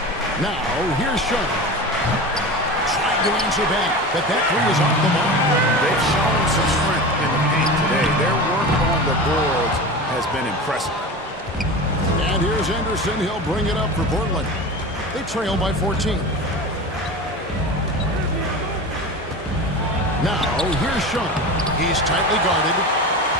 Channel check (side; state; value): both; normal; correlation 0.30